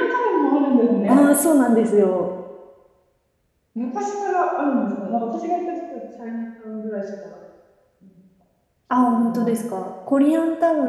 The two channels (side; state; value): both; identical; correlation 1.00